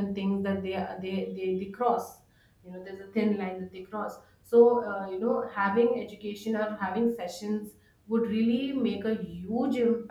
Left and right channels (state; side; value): identical; both; correlation 1.00